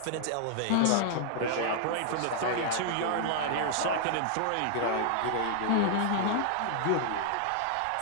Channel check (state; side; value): different; both; correlation -0.01